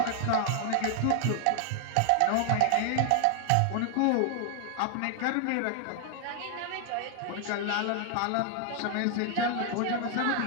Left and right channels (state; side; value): different; both; correlation 0.00